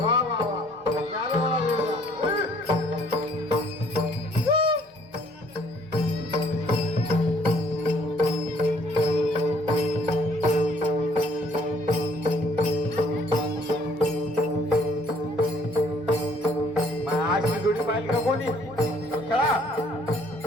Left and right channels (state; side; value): normal; both; correlation 0.61